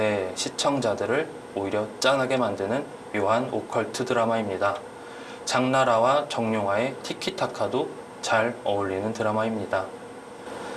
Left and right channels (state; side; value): identical; both; correlation 1.00